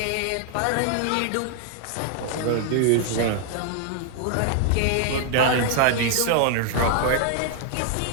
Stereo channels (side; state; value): both; different; correlation -0.01